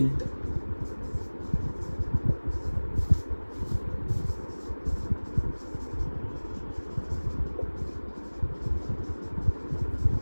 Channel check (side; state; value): both; inverted; correlation -1.00